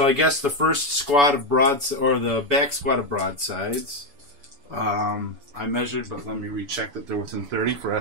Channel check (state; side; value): late; left; 7.0 ms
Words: I guess the first squad of or the back squad of broadsides. I measured, but let me recheck that they're within 30 for